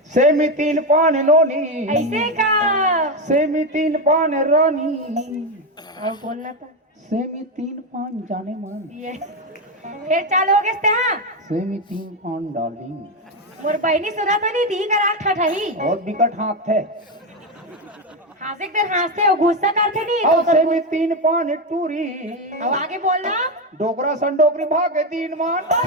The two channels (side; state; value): both; normal; correlation 0.10